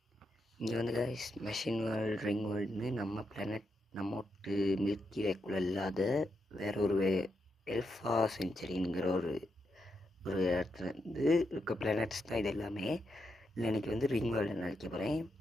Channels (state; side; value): normal; both; correlation 0.83